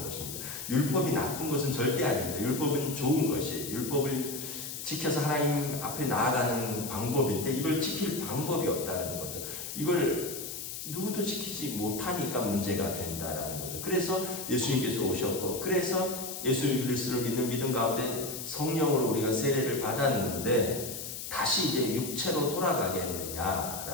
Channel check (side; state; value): left; noise; hiss, 7 dB below the sound